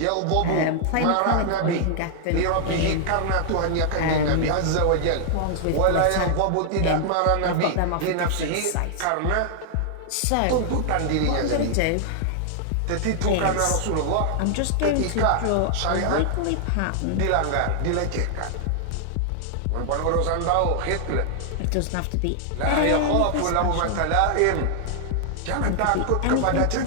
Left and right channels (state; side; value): different; both; correlation -0.01